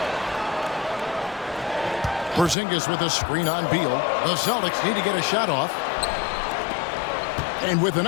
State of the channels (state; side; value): drops out; right; at 2.6 s